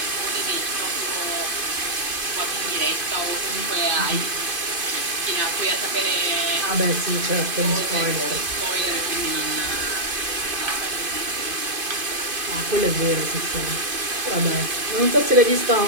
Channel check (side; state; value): left; late; 2.5 ms